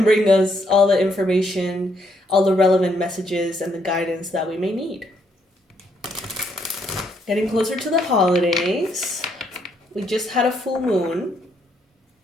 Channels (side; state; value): both; normal; correlation 0.73